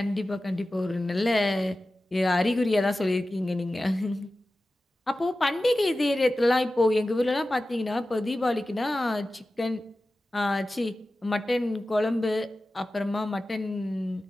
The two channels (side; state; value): both; normal; correlation 0.95